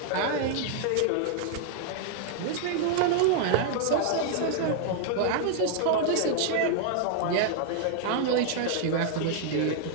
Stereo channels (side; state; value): both; different; correlation 0.00